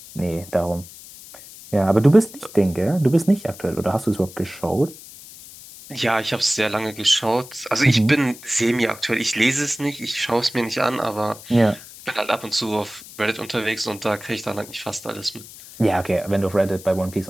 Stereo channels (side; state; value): left; noise; hiss, 17 dB below the sound